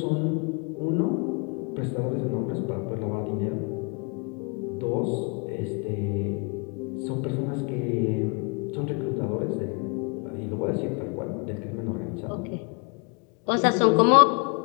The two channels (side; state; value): right; quieter; 35.1 dB